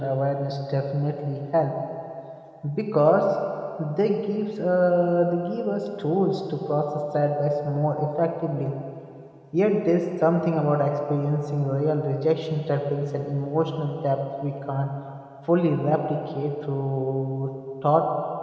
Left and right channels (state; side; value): identical; both; correlation 1.00